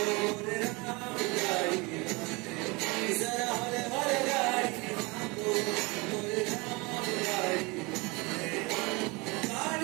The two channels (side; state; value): left; quieter; 26.3 dB